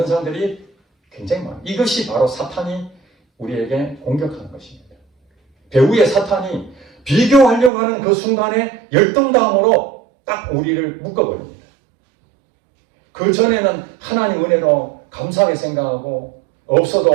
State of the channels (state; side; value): drops out; left; at 7.7 s